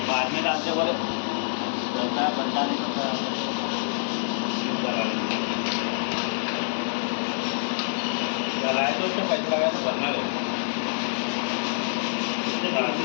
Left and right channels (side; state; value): right; silent; 61 dB below the other